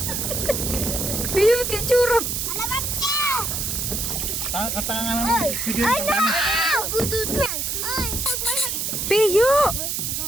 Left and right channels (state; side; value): noise; right; hiss, 1 dB below the sound